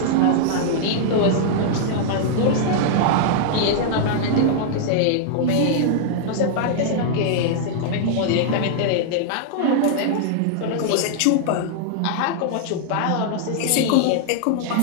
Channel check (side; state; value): both; different; correlation -0.01